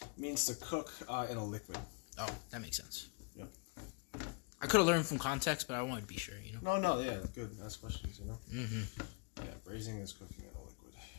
means to cook in a liquid. Oh, that makes sense. Yep. I could have learned from context, but I wanted to be sure, you know? No, yeah, good. Ask questions, you know? Mm-hmm. Yeah, braising is cooking in a liquid.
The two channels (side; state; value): right; quieter; 33.4 dB